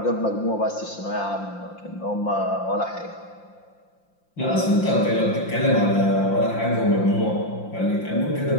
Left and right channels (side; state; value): right; late; 5.7 ms